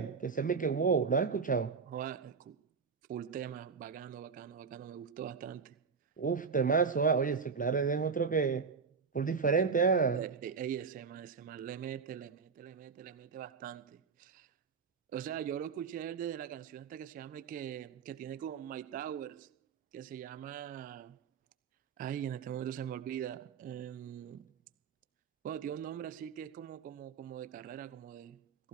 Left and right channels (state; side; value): quieter; left; 5.6 dB